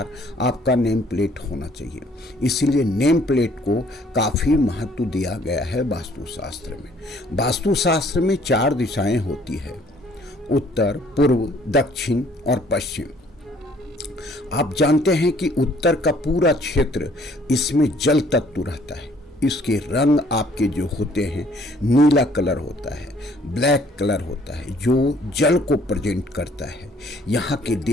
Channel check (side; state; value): both; normal; correlation 0.60